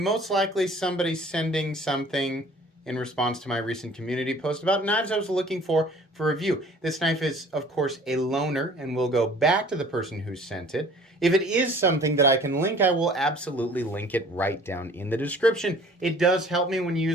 likely somebody sending something in response to my recent community post about knives I was looking for review. This knife is, of course, a loaner, and will go back to the person who sent it. If it is something that I can link, I will absolutely link it right down in the description. It does help me when you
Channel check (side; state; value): both; normal; correlation 0.50